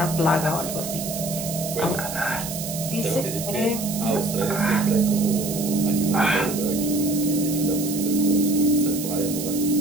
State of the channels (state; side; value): noise; right; hiss, 7 dB below the sound